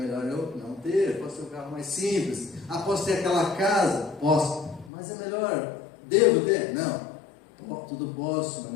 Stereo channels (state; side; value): drops out; right; at 4.9 s